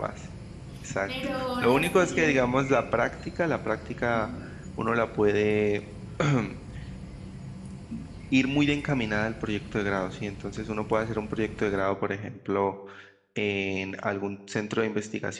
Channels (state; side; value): identical; both; correlation 1.00